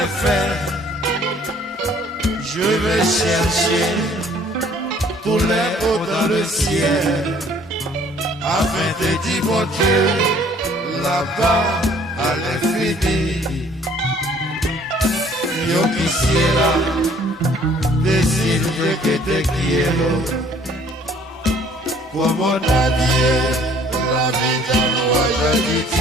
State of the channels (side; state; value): both; normal; correlation 0.57